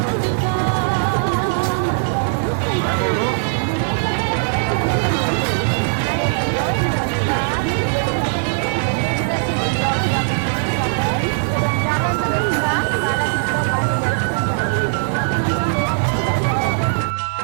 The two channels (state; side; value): silent; left; digital silence